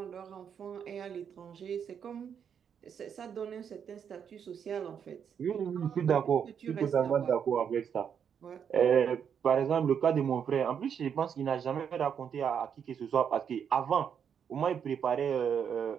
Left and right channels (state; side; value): quieter; left; 7.7 dB